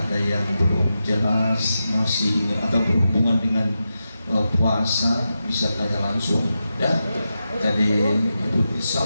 yang belum jelas, masih atau berhubungan dengan puasa, bisa tanya langsung ya. Tadi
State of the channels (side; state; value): both; inverted; correlation -0.89